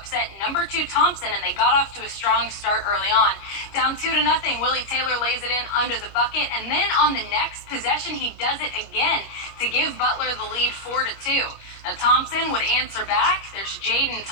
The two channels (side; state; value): right; late; 25 ms